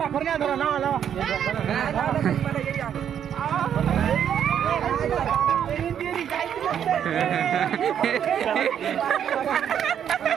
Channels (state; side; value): quieter; left; 9.1 dB